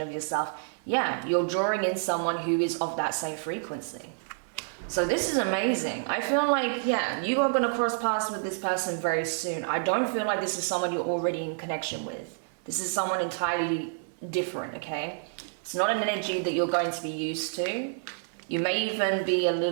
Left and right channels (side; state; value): left; silent; 59 dB below the other